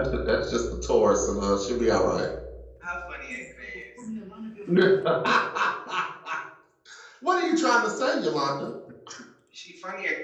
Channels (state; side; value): identical; both; correlation 1.00